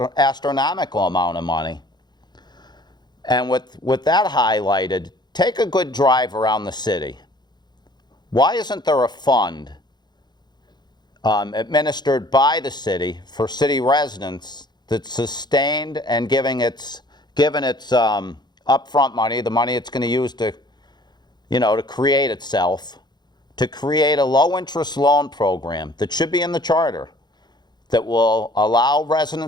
astronomical amount of money. And with that highlighted, take a good drive around the city. Why isn't there a fund administered by the city for city residents that's sustained and given its upfront money, the money it's going to use to create itself, to create a low-interest loan program that should be in the charter that will allow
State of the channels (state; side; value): late; right; 0.21 ms